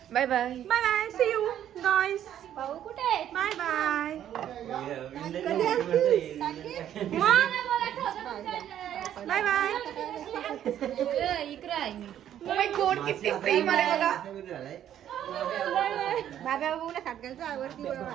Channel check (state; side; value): quieter; left; 10.7 dB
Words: Bye bye bye bye. See you guys. भाऊ कुठे बाय बाय. Bye bye. इकडे आहे. ओ माय गॉड किती प्रेम आले बघा. बाबा बोला सातगालचा आवडती